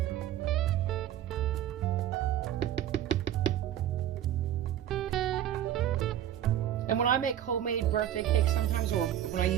And when I make homemade birthday cakes sometimes, or when I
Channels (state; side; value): quieter; left; 11.3 dB